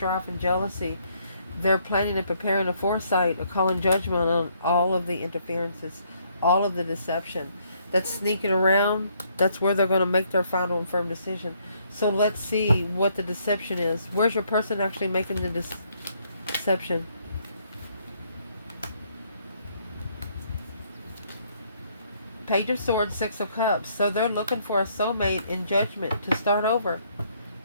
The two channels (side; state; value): both; inverted; correlation -0.69